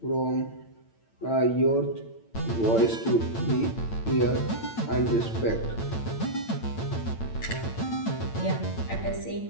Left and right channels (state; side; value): late; right; 8.9 ms